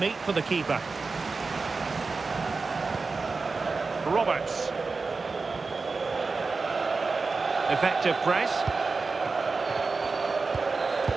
for the keeper. Roberts. Effective press.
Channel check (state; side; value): quieter; left; 4.2 dB